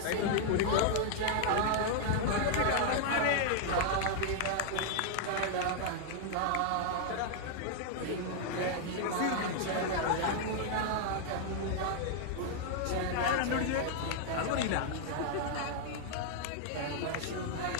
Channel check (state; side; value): different; both; correlation 0.00